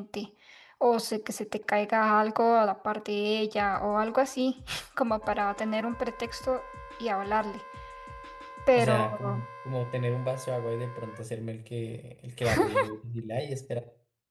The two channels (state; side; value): identical; both; correlation 1.00